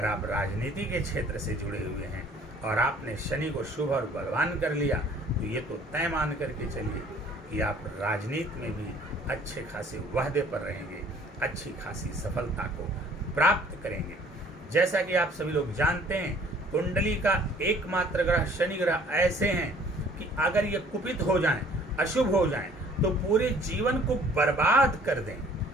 आप राजनीति के क्षेत्र से जुड़े हुए हैं और आपने शनि को शुभ और बलवान कर लिया तो ये तो तय मान करके चलिए कि आप राजनीति में भी अच्छे खासे वाहदे पर रहेंगे, अच्छी खासी सफलता को प्राप्त करेंगे। जैसा कि आप सभी लोग जानते हैं, कुंडली का एकमात्र ग्रह शनि ग्रह ऐसे हैं कि अगर ये कुपित हो जाएं, अशुभ हो जाएं, तो पूरे जीवन को बर्बाद कर दें,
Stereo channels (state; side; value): normal; both; correlation 0.56